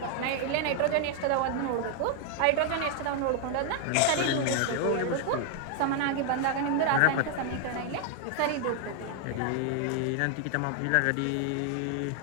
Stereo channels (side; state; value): both; different; correlation 0.00